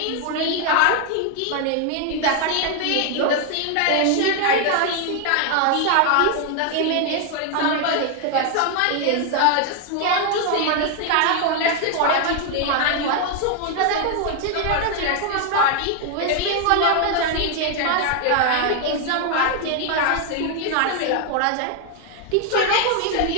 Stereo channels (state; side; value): different; both; correlation 0.01